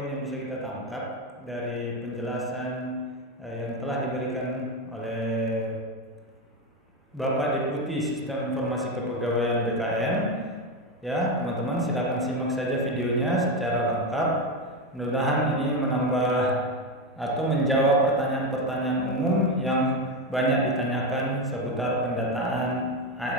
yang bisa kita tangkap dari penjelasan yang telah diberikan oleh Bapak Deputi Sistem Informasi Kepegawaian BKN. Ya, teman-teman silakan simak saja videonya secara lengkap. Mudah-mudahan ini menambah atau menjawab pertanyaan-pertanyaan umum yang banyak ditanyakan seputar pendataan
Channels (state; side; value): normal; both; correlation 0.13